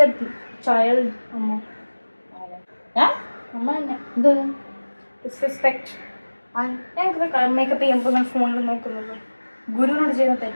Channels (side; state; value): both; inverted; correlation -1.00